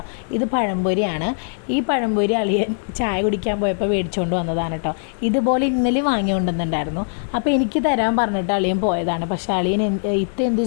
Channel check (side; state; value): right; silent; 65 dB below the other